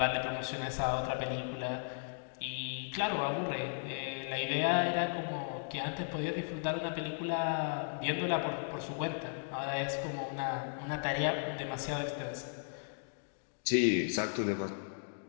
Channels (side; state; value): right; silent; digital silence